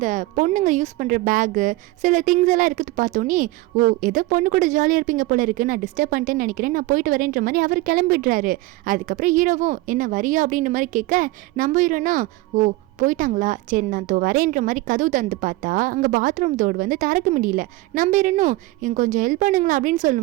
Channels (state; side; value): quieter; left; 19.8 dB